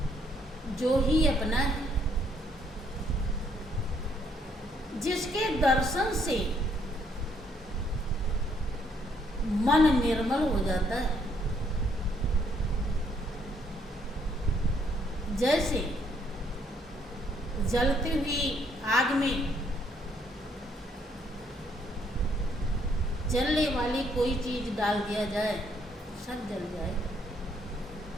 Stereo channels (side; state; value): both; normal; correlation 0.70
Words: जो ही अपना है, जिसके दर्शन से मन निर्मल हो जाता है। जैसे जलती हुई आग में जलने वाली कोई चीज डाल दिया जाए, सब जल जाए।